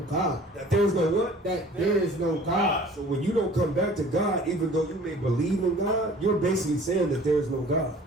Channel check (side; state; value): both; normal; correlation 0.49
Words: That there's no what? That there is no God. So when you don't come back to God, even though you may believe in God, you're basically saying that there is no God.